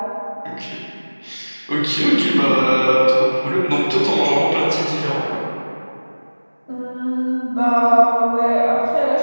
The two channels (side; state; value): both; inverted; correlation -1.00